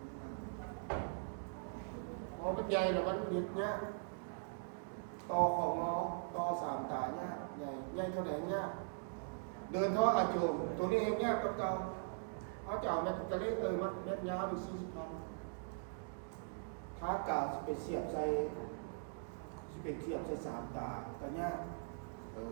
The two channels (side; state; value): left; silent; digital silence